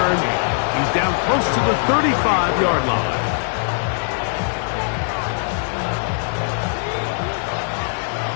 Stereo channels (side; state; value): right; silent; digital silence